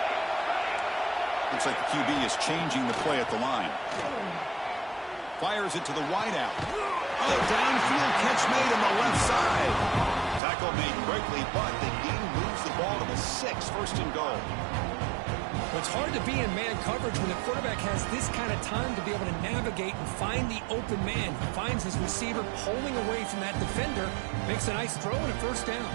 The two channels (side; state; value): left; drops out; at 10.4 s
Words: Looks like the QB is changing the play at the line. Fires it to the wideout. Downfield catch made on the left side. Tackle made quickly, but the game moves the ball to the 6, first and goal. It's hard to be in man coverage when the quarterback has this kind of time to be able to navigate and find the open man. He finds his receiver pulling away from that defender, makes a nice throw and a first down.